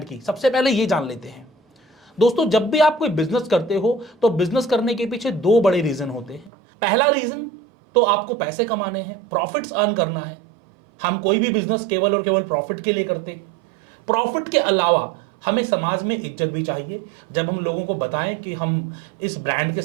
की। सबसे पहले ये जान लेते हैं। दोस्तों, जब भी आप कोई बिजनेस करते हो तो बिजनेस करने के पीछे दो बड़े रीजन होते हैं। पहला रीजन तो आपको पैसे कमाने हैं, प्रॉफिट्स अर्न करना है। हम कोई भी बिजनेस केवल और केवल प्रॉफिट के लिए करते हैं। प्रॉफिट के अलावा हमें समाज में इज्जत भी चाहिए। जब हम लोगों को बताएं कि हम इस ब्रांड के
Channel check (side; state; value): left; drops out; at 6.5 s